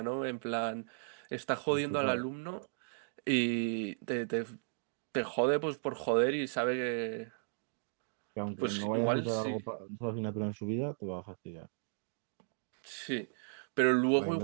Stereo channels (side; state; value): left; silent; digital silence